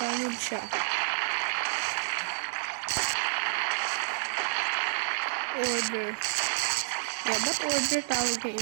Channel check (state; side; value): silent; left; 58 dB below the other